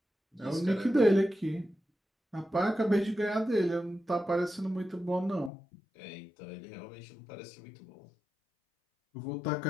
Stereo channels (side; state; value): right; drops out; at 5.5 s